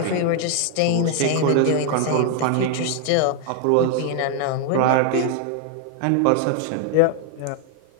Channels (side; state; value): both; different; correlation 0.00